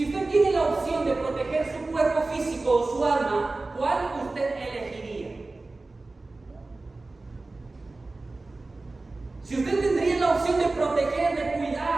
usted tiene la opción de proteger su cuerpo físico o su alma, ¿cuál usted elegiría?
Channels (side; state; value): left; quieter; 3.3 dB